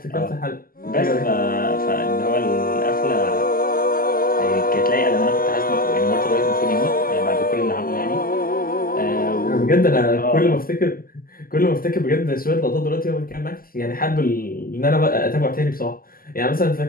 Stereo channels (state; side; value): late; right; 0.42 ms